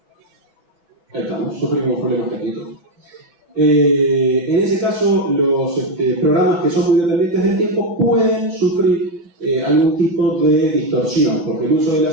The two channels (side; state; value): left; late; 5.2 ms